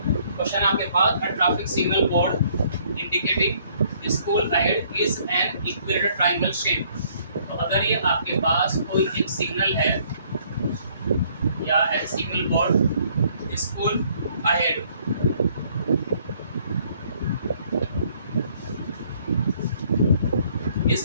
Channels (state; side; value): inverted; both; correlation -0.63